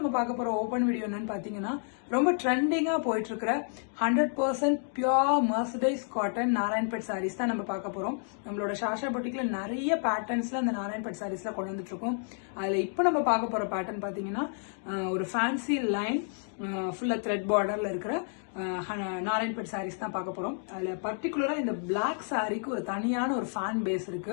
பார்க்க போற ஓபன் வீடியோ என்னன்னு பாத்தீங்கன்னா ரொம்ப ட்ரெண்டிங்கா போயிட்டு இருக்கிற 100% பியூர் மர்சடைஸ் காட்டன் நாராயண்பேட் சாரீஸ் தான் நம்ம பார்க்க போறோம். நம்மளோட ஷாஷா பொட்டிக்ல நிறைய பேட்டர்ன்ஸ்ல அந்த நாராயண்பேட் சாரீஸ்ல கொண்டு வந்துட்டு இருக்கோம். அதுல இப்போ நம்ம பார்க்க போற பேட்டர்ன் பாத்தீங்கன்னா ஒரு ஃபேன்சி லைன் ஃபுல்லா த்ரெட் பார்டர்ல இருக்கிற நாராயண்பேட் சாரீஸ் தான் பார்க்க போறோம். அதுல பர்டிகுலரா இந்த பிளாக் சாரிக்கு ஒரு தனியான ஒரு ஃபேன் பேஸ்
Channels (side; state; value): right; silent; 58 dB below the other